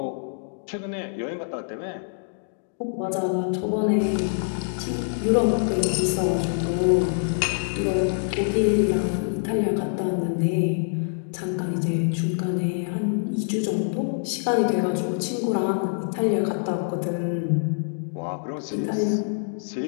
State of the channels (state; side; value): silent; right; digital silence